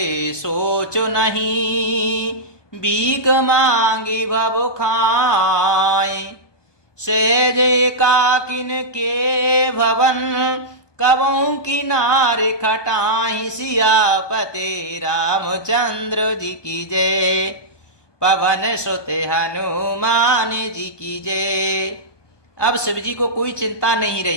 सोचो नहीं, भीख मांगी भव खाए। सहज एकाकिन के भवन, कबहू किनारे खटाई। सियापते रामचंद्र जी की जय, पवन सुत हनुमान जी की जय। अब शिव जी को कोई चिंता नहीं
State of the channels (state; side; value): late; right; 1.2 ms